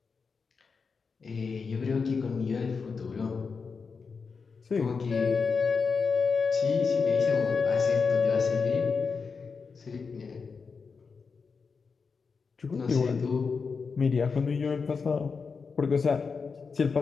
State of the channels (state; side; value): quieter; right; 5.1 dB